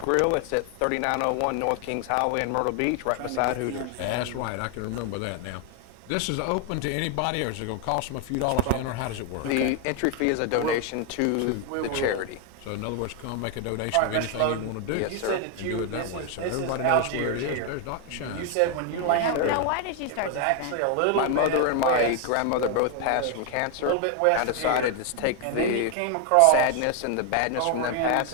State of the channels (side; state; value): both; different; correlation 0.01